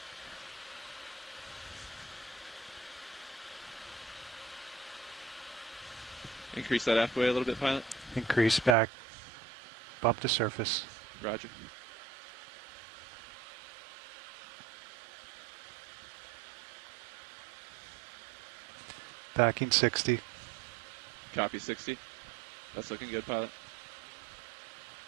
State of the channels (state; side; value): drops out; left; at 8.8 s